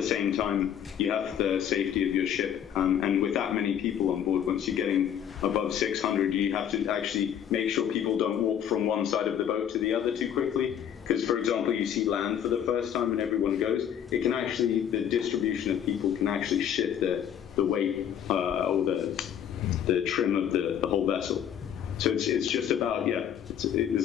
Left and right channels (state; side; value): quieter; right; 9.4 dB